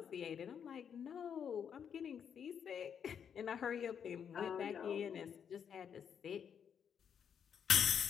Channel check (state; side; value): quieter; right; 7.8 dB